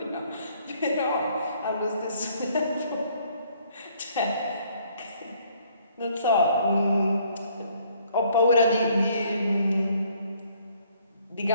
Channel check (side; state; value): both; inverted; correlation -0.63